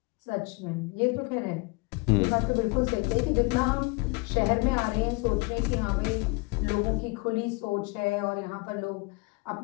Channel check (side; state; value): right; quieter; 27.6 dB